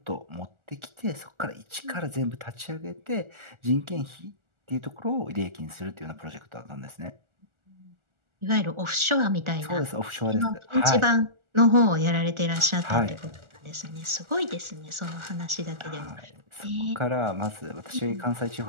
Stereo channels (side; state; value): left; late; 1.4 ms